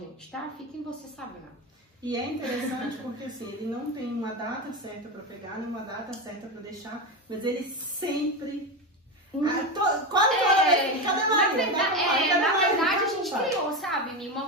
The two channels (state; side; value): normal; both; correlation 0.17